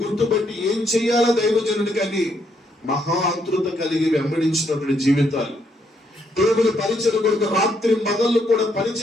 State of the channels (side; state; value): both; normal; correlation 0.74